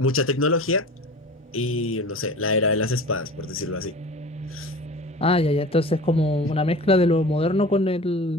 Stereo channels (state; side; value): normal; both; correlation 0.38